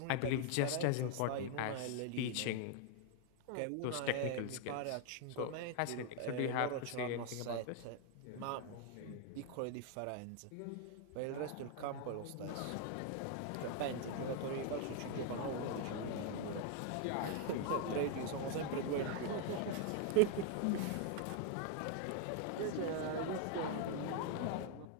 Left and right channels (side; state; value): both; different; correlation 0.00